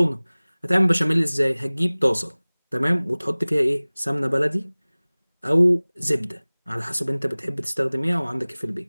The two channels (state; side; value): inverted; both; correlation -1.00